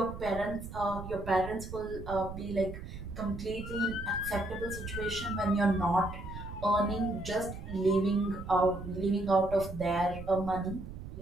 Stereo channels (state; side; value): noise; right; rumble, 10 dB below the sound